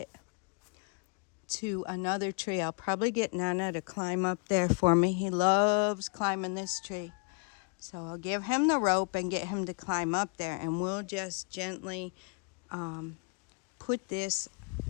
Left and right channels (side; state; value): right; quieter; 35.9 dB